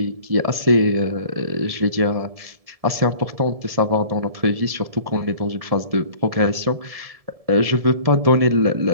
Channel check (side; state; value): left; late; 1.7 ms